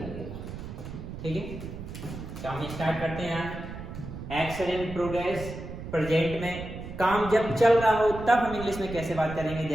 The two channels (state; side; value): noise; right; rumble, 10 dB below the sound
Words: ठीक है, तो हम स्टार्ट करते हैं। एक्शन इन प्रोग्रेस, प्रेजेंट में काम जब चल रहा हो तब हम इंग्लिश में कैसे बात करेंगे,